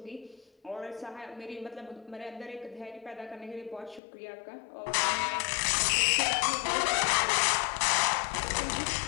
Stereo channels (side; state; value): right; drops out; at 4.0 s